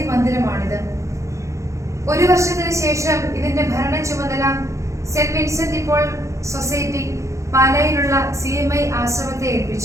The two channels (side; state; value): left; late; 0.15 ms